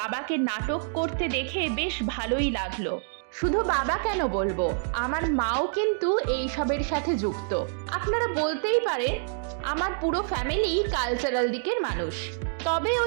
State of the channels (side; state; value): left; silent; digital silence